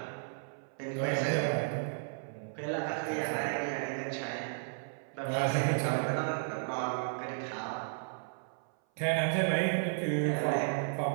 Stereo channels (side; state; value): left; silent; 55 dB below the other